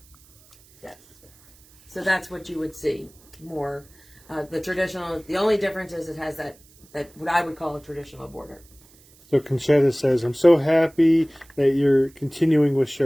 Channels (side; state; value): right; noise; hiss, 28 dB below the sound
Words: Yes. So that's what you would see more. The traditional, the only difference is it has that what I would call a traditional border. So Conchetta says, I'm so happy that you're continuing with